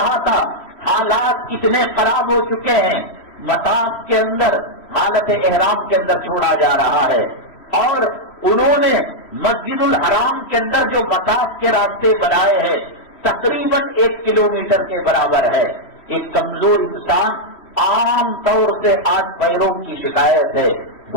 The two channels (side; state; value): right; late; 3.1 ms